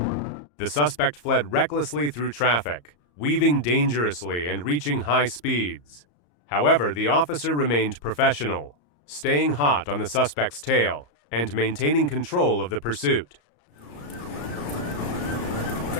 The suspect fled recklessly through traffic, weaving dangerously and reaching high speeds. However, the officer remained professional, staying hot on the suspect's tail and maintaining control of the pursuit.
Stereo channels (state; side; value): late; right; 34 ms